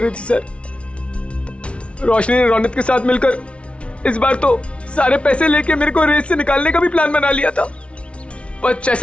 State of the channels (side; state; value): right; late; 0.060 ms